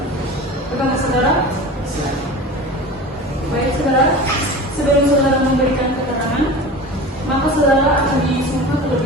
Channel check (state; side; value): normal; both; correlation 0.34